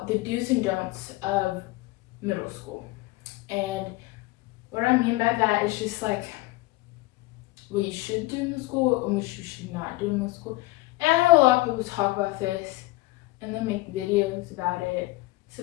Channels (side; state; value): right; quieter; 20.4 dB